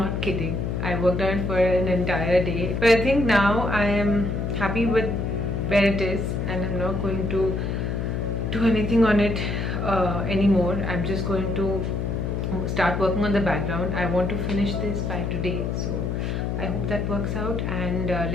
kidding. I worked on it for an entire day. But I think now I am happy with where it is, and I'm not going to do anything on it anymore. I'm just going to start working on the background. I want to finish this by today, so I hope that works out, and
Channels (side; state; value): left; noise; hum, 1 dB below the sound